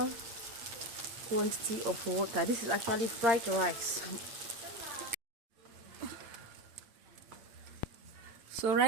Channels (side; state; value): left; late; 8.7 ms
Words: quantity of water. This is actually fried rice. So